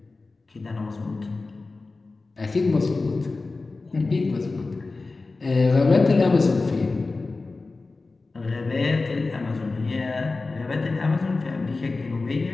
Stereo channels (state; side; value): quieter; right; 3.7 dB